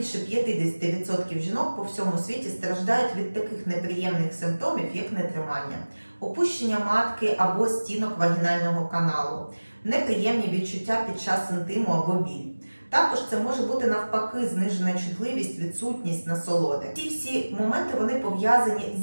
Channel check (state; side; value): inverted; both; correlation -1.00